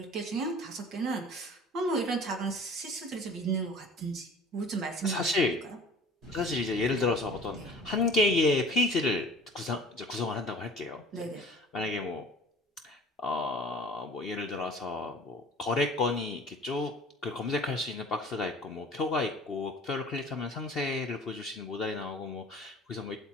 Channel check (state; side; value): normal; both; correlation 0.45